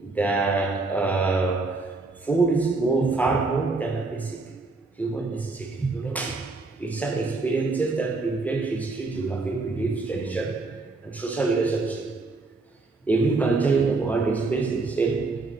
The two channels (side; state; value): left; quieter; 3.6 dB